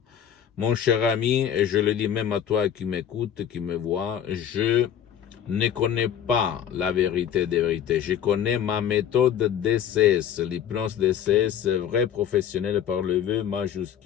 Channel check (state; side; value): quieter; right; 9.3 dB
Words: mon cher ami, et je le dis même à toi qui m'écoute, qui me voit, je ne connais pas la vérité des vérités. Je connais ma méthode DCS, l'hypnose DCS, vrai professionnel par le V